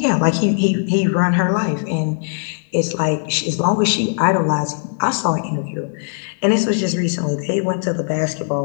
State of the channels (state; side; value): silent; right; digital silence